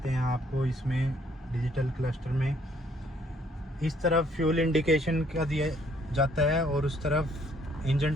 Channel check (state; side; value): normal; both; correlation 0.65